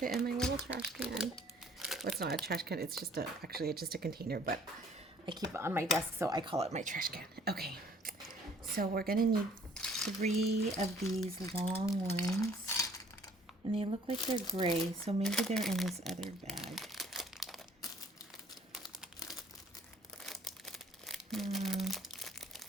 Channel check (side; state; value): both; normal; correlation 0.57